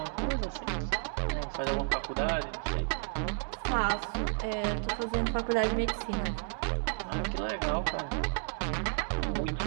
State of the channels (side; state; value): left; silent; 56 dB below the other